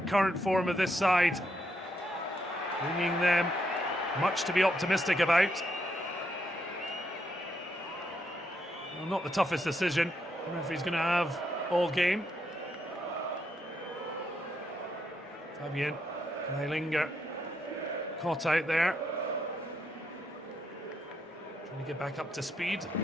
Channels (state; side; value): normal; both; correlation 0.78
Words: current form of this side, bringing them much to be optimistic about. Well, not the toughest decision the referee's going to have all game. Fabian Kreilinger caught out there. Trying to get back up to speed.